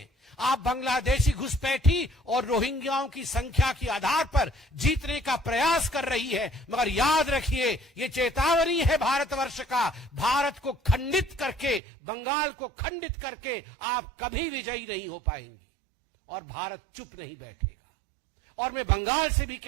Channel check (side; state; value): left; drops out; at 11.8 s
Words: आप बांग्लादेशी घुसपैठी और रोहिंग्याओं की संख्या के आधार पर जीतने का प्रयास कर रही है, मगर याद रखिए, ये चेतावनी है भारतवर्ष का। भारत को खंडित करके, बंगाल को खंडित करके आप कभी विजयी नहीं हो पाएंगी और भारत चुप नहीं बैठेगा। और मैं बंगाल से भी